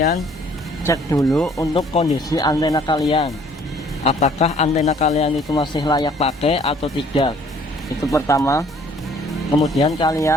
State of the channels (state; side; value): normal; both; correlation 0.58